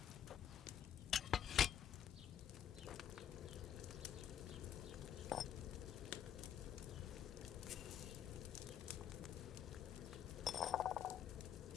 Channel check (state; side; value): quieter; right; 9.4 dB